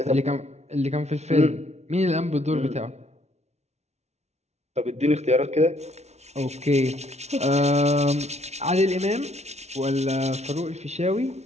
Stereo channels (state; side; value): late; left; 0.32 ms